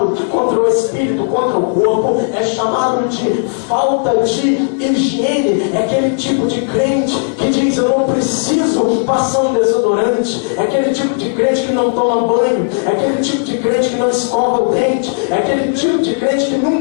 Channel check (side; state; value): right; silent; digital silence